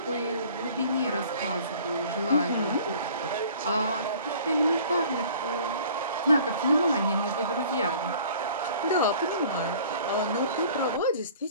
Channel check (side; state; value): both; inverted; correlation -0.49